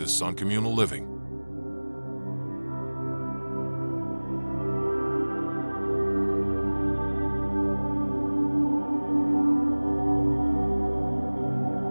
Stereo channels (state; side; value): inverted; both; correlation -1.00